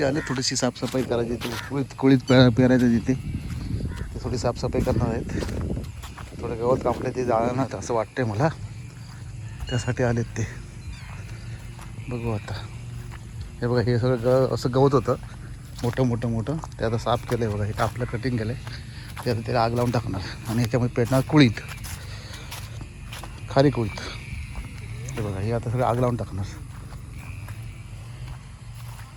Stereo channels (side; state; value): both; identical; correlation 1.00